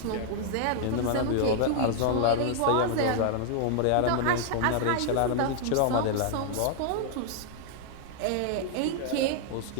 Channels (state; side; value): different; both; correlation -0.01